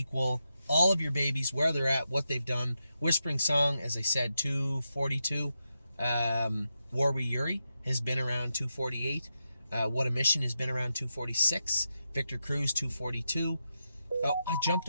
all of your babies, where they're at, what they've done. Whispering Song, as I said, 242. Warwi Yuri has been around 248. What a Mission has been around 246. Victor Cruz, 242. Oh, I jumped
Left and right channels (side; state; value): both; inverted; correlation -0.87